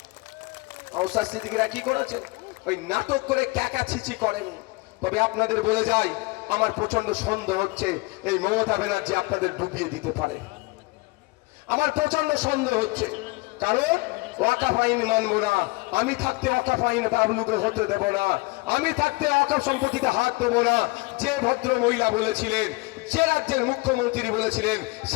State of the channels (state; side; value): quieter; right; 24.3 dB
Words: নওশাদ সিদ্দিকীরা কি করেছে? ওই নাটক করে ক্যাকাছিচি করেন। তবে আপনাদের বলে যাই, আমার প্রচন্ড সন্দেহ হচ্ছে এই মমতা ব্যানার্জি আপনাদের ডুবিয়ে দিতে পারে। আমার প্রচন্ড সন্দেহ হচ্ছে, কারণ ওয়াকাফ আইন মানবো না, আমি থাকতে ওয়াকাফ আইন বাবলুকে হতে দেব না, আমি থাকতে ওয়াকাফ সম্পত্তিতে হাত দেবো না। যে ভদ্র মহিলা বলেছিলেন, যে রাজ্যের মুখ্যমন্ত্রী বলেছিলেন,